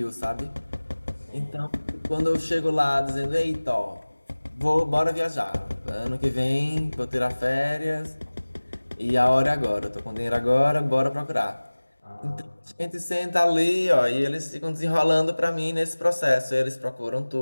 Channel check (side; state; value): both; inverted; correlation -1.00